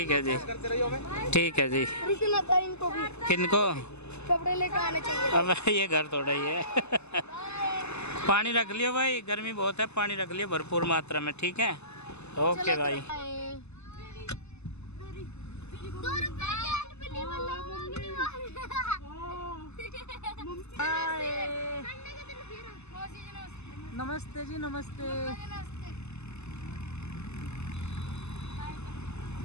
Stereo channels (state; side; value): late; right; 0.80 ms